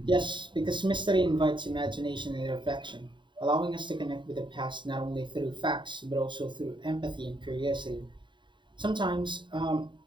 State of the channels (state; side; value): late; left; 0.23 ms